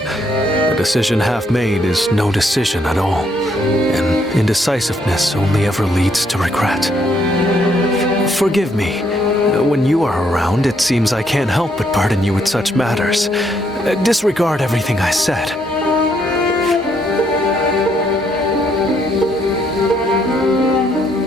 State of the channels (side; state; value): both; normal; correlation 0.72